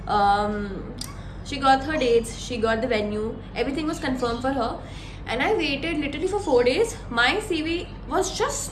she got her dates, she got the venue, everything was confirm for her. And I waited literally for 4 days. My CV was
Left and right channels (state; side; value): identical; both; correlation 1.00